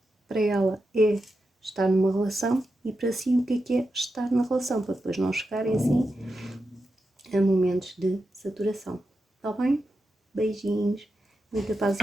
para ela é estar numa relação e para si o que é estar na relação, para depois não chegarem assim a momentos de saturação. Está bem? Beijinhos, muita paz e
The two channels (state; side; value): normal; both; correlation 0.88